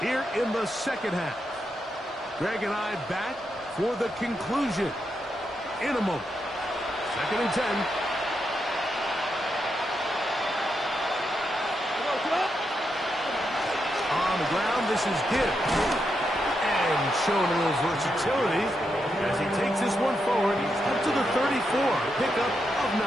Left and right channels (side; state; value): both; normal; correlation 0.83